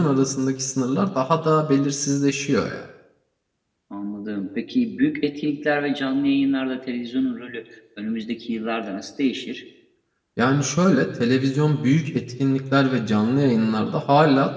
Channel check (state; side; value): identical; both; correlation 1.00